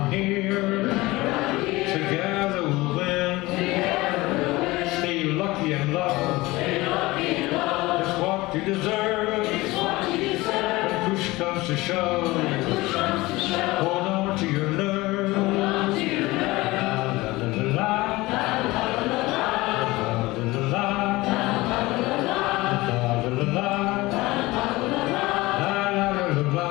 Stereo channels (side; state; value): right; quieter; 20.5 dB